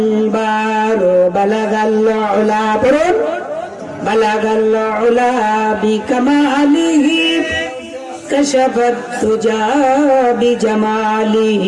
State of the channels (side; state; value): both; identical; correlation 1.00